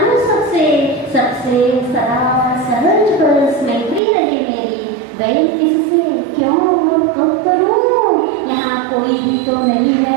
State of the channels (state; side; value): drops out; left; at 4.0 s